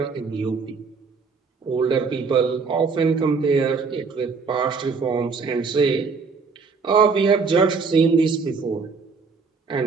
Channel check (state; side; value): quieter; left; 4.8 dB